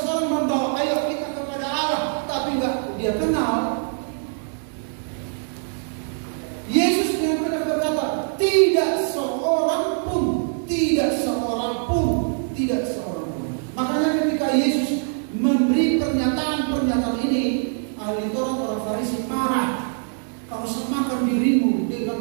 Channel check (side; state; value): left; silent; 63 dB below the other